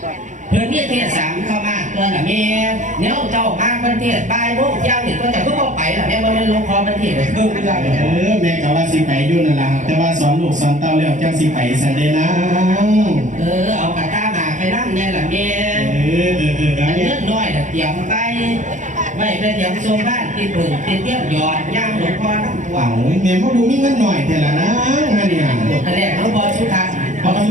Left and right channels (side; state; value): left; late; 0.36 ms